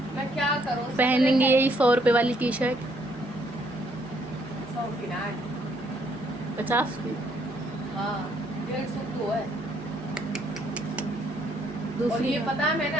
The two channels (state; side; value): normal; both; correlation 0.68